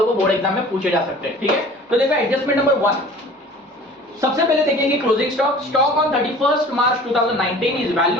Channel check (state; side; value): normal; both; correlation 0.45